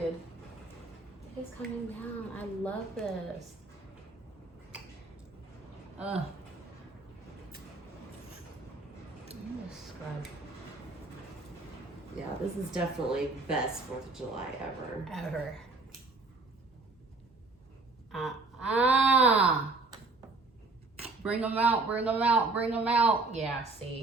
It's coming down. I love this. I'm gonna scrub. Yeah, this is definitely best 4th of July ever. Bring them out, bring them out, bring them out. Yeah,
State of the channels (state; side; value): quieter; left; 3.5 dB